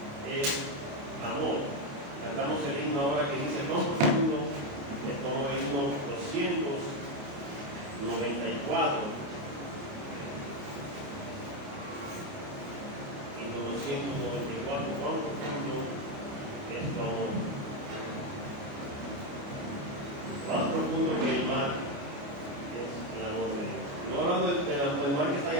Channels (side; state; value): left; late; 28 ms